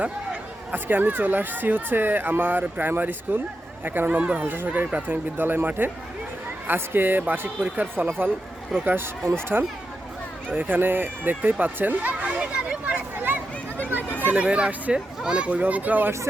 আজকে আমি চলে আসছি আমার প্রাইমারি স্কুল 51 নম্বর হালসা সরকারি প্রাথমিক বিদ্যালয় মাঠে। আজকে বার্ষিক পরীক্ষার ফলাফল প্রকাশ অনুষ্ঠান। তো এখানে দেখতেই পাচ্ছেন ছেলেমেয়েরা আসছে, অনেক অভিভাবকরাও আসছে।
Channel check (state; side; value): normal; both; correlation 0.88